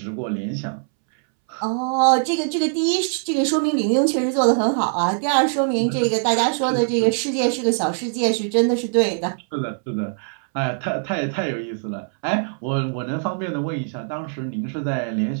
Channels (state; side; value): silent; left; 64 dB below the other